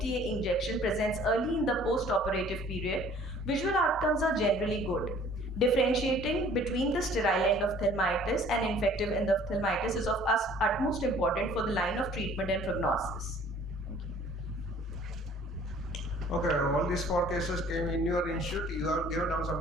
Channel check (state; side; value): normal; both; correlation 0.53